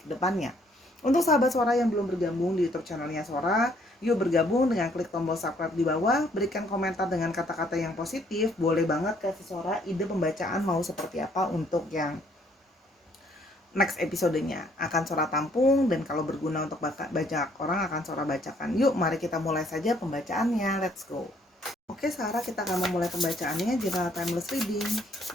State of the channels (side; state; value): both; normal; correlation 0.65